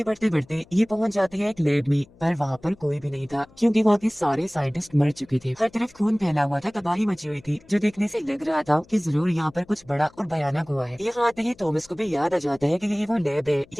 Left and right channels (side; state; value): left; noise; hum, 27 dB below the sound